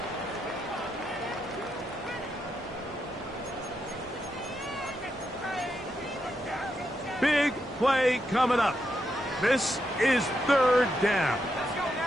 Big play coming up. This is third down.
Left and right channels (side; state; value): both; normal; correlation 0.83